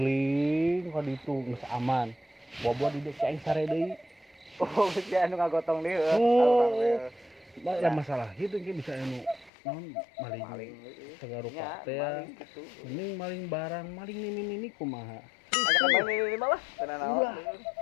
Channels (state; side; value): drops out; right; at 9.5 s